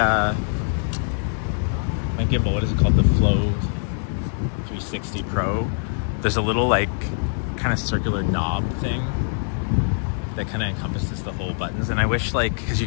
gimbal, what is it called? The Flow 360 Pro. There's a little like kind of circular knob thing that kind of encompasses the whole buttons, and I wish like, because you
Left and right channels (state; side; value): silent; right; 60 dB below the other